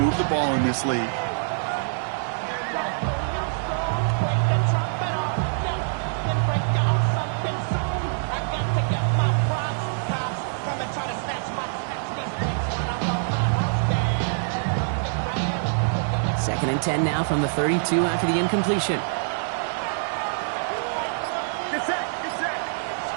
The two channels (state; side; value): silent; left; digital silence